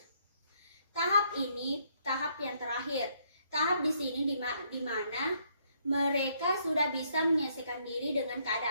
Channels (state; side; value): inverted; both; correlation -0.70